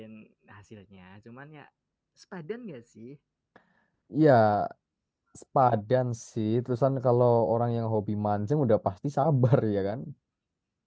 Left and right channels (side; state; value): both; identical; correlation 1.00